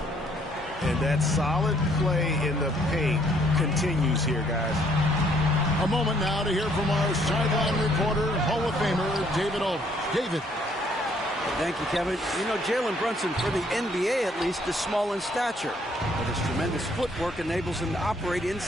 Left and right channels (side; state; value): both; normal; correlation 0.65